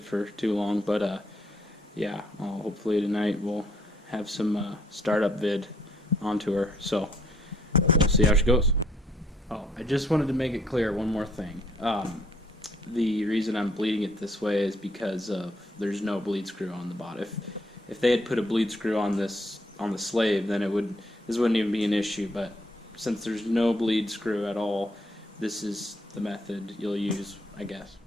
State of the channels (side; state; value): both; normal; correlation 0.68